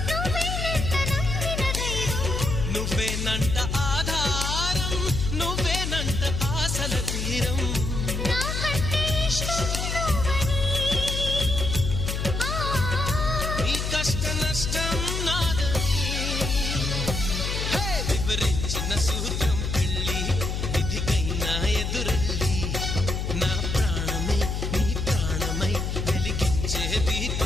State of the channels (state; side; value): noise; left; hum, 2 dB below the sound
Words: నువ్వేనంట నమ్మిన దైవం నువ్వేనంట ఆధారం నువ్వేనంట ఆశల తీరం నాకంటే ఇష్టం నువ్వని నీ కష్ట నష్టం నాదని వివరించిన సూత్రం పెళ్ళి విధికైనా ఎదురెళ్ళి నా ప్రాణమే నీ ప్రాణమై వెలిగించే